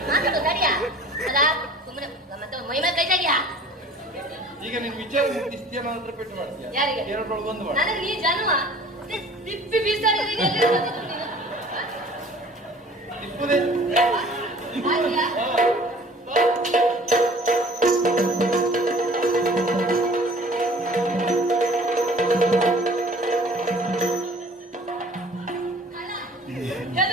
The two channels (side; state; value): both; normal; correlation 0.49